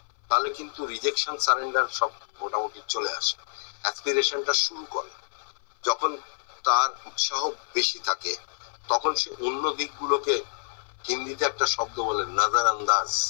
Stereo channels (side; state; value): right; silent; 60 dB below the other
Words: তাহলে কিন্তু রিজেকশন, সারেন্ডার সব মোটামুটি চলে আসে। অ্যাসপিরেশনটা শুরু করে যখন তার উৎসাহ বেশি থাকে, তখন সে অন্য দিকগুলোকে, হিন্দিতে একটা শব্দ বলে নজর আন্দাজ,